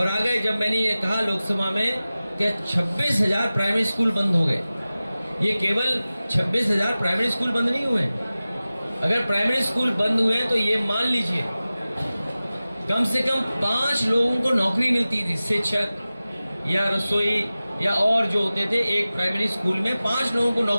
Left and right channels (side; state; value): both; inverted; correlation -0.96